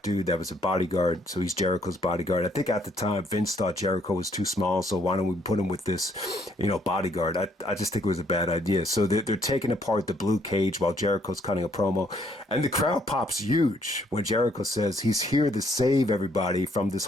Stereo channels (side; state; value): both; normal; correlation 0.68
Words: that was a bodyguard. So he's Jericho's bodyguard. I think at the time, Vince thought Jericho was too small. So why don't we put him with this, bodyguard? I just think it was a bad idea. So they're taking apart the blue cage while Jericho's cutting a promo. And the crowd pops huge when Jericho says he's here to save everybody from this